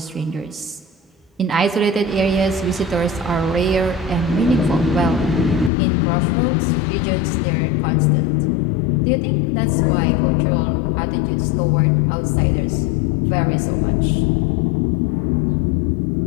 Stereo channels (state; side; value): drops out; right; at 5.7 s